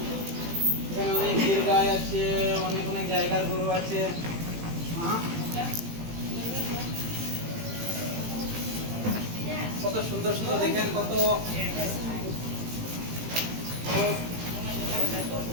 এখানে অনেক গির গাই আছে, অনেক অনেক জায়গার গরু আছে। কত সুন্দর সুন্দর দেখেন, কত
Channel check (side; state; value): left; late; 18 ms